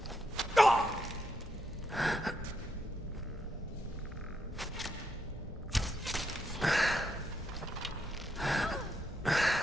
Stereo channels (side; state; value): both; normal; correlation 0.80